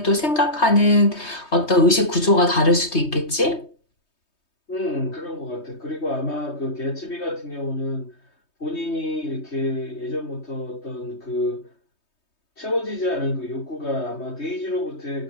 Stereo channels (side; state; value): right; late; 3.2 ms